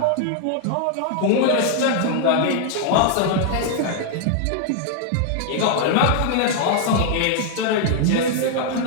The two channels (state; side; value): different; both; correlation -0.01